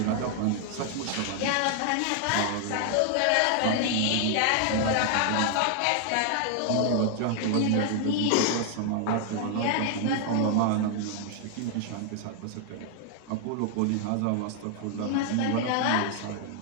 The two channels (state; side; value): different; both; correlation 0.00